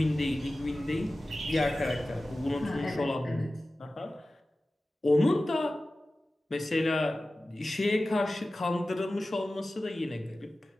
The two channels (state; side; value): normal; both; correlation 0.96